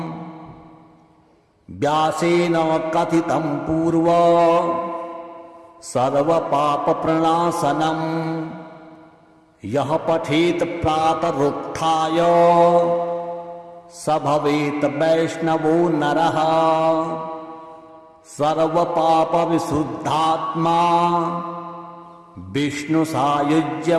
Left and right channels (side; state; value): both; identical; correlation 1.00